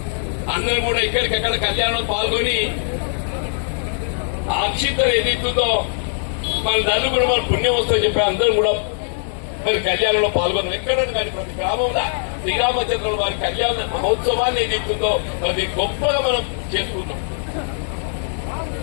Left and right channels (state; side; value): silent; right; digital silence